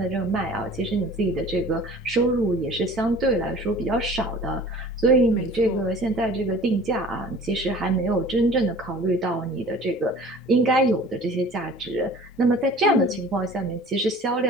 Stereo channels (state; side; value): normal; both; correlation 0.46